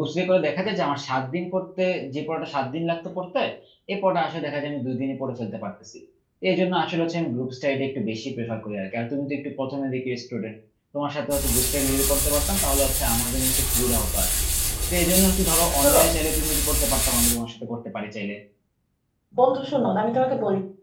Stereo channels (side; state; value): both; identical; correlation 1.00